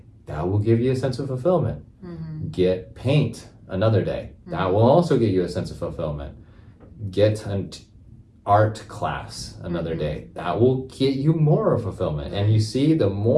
That will give you a sense of fulfillment. Get paint another day. That will also give you a sense of fulfillment. Get an art class another day. That will get you more of fulfillment. And you see, the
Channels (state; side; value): identical; both; correlation 1.00